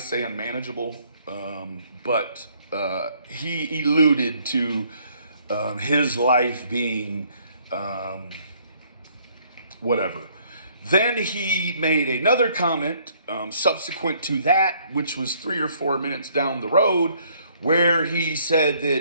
unmanageable, but he alluded to his life being whatever. Then he made another comment subsequent to that, which was 3 or 4 minutes down the road, where he said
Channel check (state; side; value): inverted; both; correlation -0.64